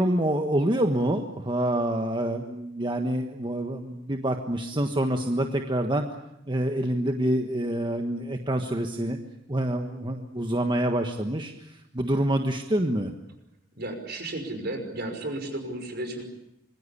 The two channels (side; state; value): both; normal; correlation 0.71